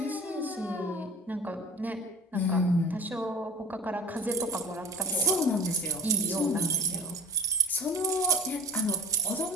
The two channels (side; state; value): both; normal; correlation 0.34